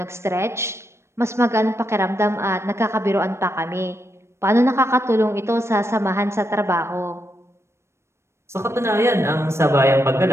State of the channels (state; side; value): late; left; 0.13 ms